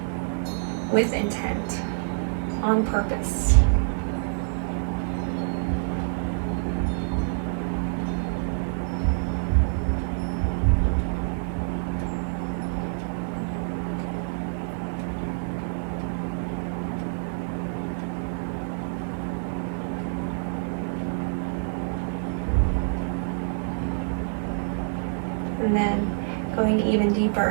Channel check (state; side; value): silent; left; digital silence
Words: with intent, on purpose? And then going even